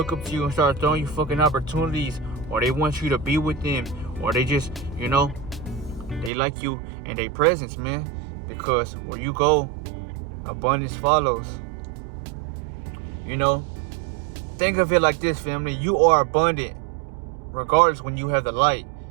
up to you and start throwing you fucking opportunities, or they want you to be with them, or they just, they like you and their presence, man. Because where you go, abundance follows. Think of it like this, family. You are abundant regardless when you have the light.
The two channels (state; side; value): drops out; left; at 6.3 s